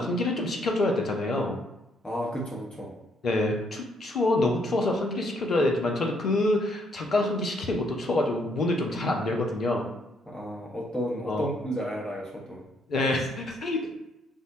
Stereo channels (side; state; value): both; normal; correlation 0.71